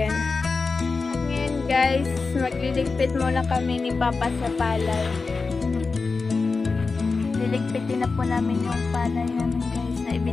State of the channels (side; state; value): right; quieter; 4.3 dB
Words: Ngayon guys, magliligpit muna kami ni Papa sa palay. Liligpitin na po namin yung palay namin guys na